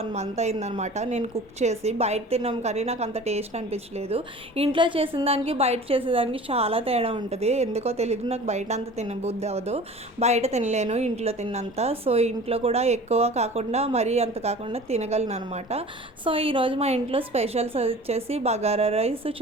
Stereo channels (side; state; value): both; normal; correlation 0.42